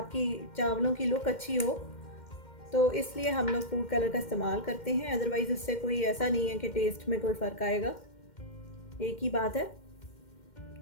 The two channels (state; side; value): late; right; 2.1 ms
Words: चावलों की लुक अच्छी हो, तो इसलिए हम लोग फूड कलर का इस्तेमाल करते हैं। अदरवाइज़ उससे कोई ऐसा नहीं है कि टेस्ट में कोई फ़र्क आएगा, एक ही बात है।